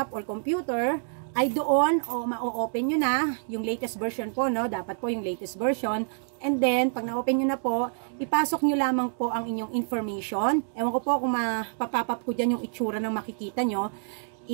or computer, ay doon ma-open nyo na yung latest version po, no? Dapat po yung latest version. And then, pag na-open nyo na po, ipasok nyo lamang po ang inyong information. Ewan ko po kung mapapap ko dyan yung itsura ng makikita nyo.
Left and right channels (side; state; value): left; silent; digital silence